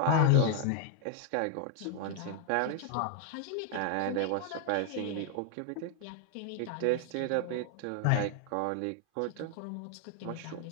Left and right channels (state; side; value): different; both; correlation 0.00